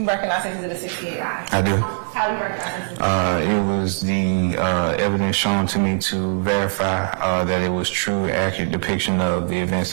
recognize State's Exhibit 68I? I do. How do you recognize it? It was the evidence shown to me to verify that it was true, accurate depiction of the events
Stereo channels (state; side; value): silent; left; 58 dB below the other